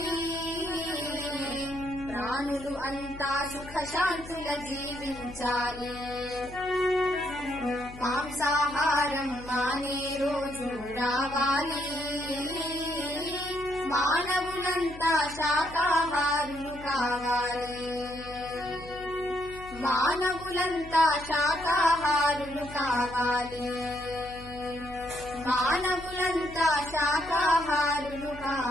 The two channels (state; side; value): noise; left; hum, 16 dB below the sound